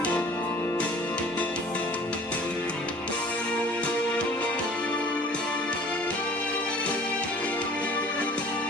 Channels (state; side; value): normal; both; correlation 0.49